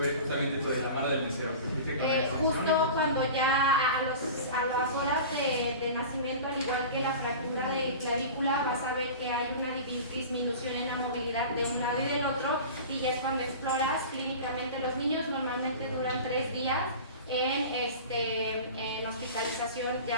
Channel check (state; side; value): inverted; both; correlation -0.35